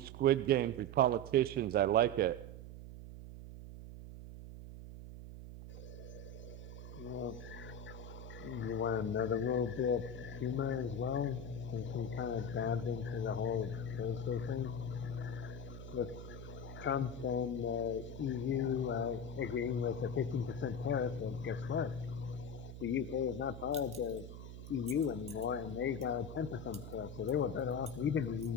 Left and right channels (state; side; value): noise; right; hum, 11 dB below the sound